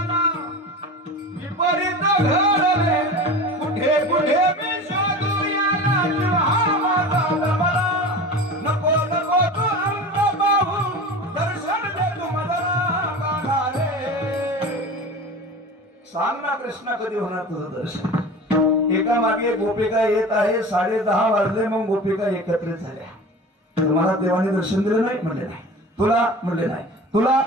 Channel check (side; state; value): both; normal; correlation 0.34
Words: विपरीत घडले कुठे कुठे मी शोधू याला हा माझा जमला नको नको तू रंग पाहू दर्शन दे तू मला गाना रे सांग ना कृष्णा कधी होणार तुझं दर्शन एका मागे एक गोपिका येत आहे 10:30 वाजले मग गोपिका एकत्रित झाल्या तुम्हाला देवाने दर्शन दिलं नाही म्हणले नाही तुला म्हणले नाही तुला